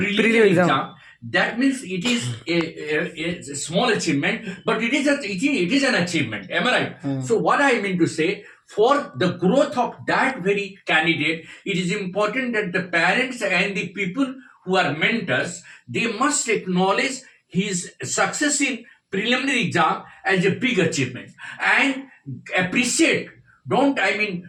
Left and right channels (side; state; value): both; identical; correlation 1.00